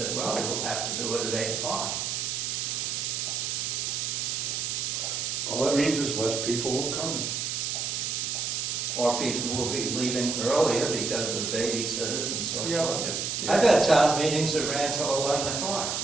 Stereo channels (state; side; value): noise; right; hiss, 1 dB below the sound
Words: well, we'll have to do it at 8 o'clock. all that means is less people will come. Or people will be leaving earlier because of babysitters and so Yeah. forth. I've had town meetings that ran till 11 o'clock.